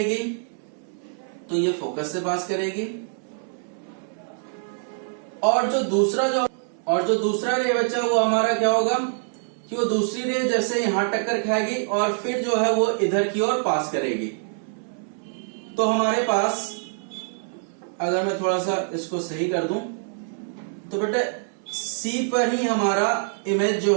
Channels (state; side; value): silent; left; 62 dB below the other